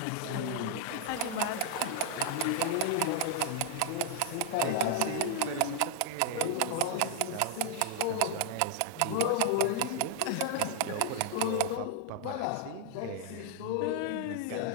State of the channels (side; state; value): both; different; correlation 0.00